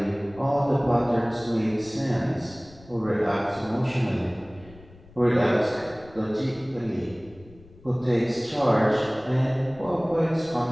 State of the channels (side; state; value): left; noise; rumble, 23 dB below the sound